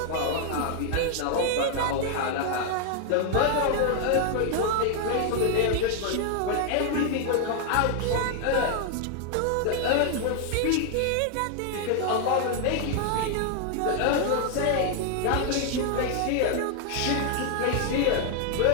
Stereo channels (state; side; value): different; both; correlation 0.00